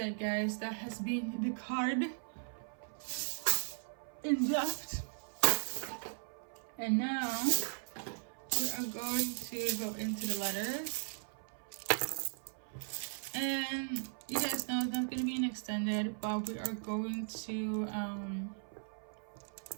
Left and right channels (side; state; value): left; silent; 53 dB below the other